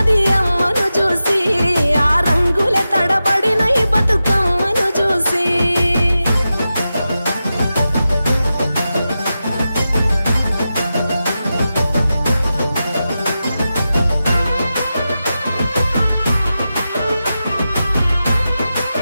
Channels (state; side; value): inverted; both; correlation -0.91